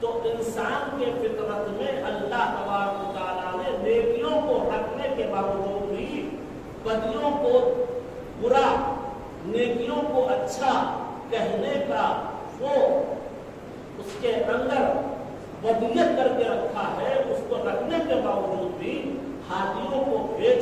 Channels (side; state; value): both; identical; correlation 1.00